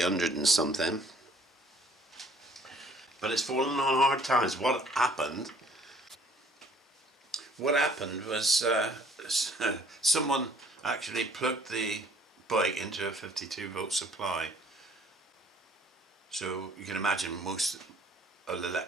and something. But it's fallen on hard times. What happened? What happened was someone actually plugged the bike into a 52 volt supply. So you can imagine most of the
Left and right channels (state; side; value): normal; both; correlation 0.58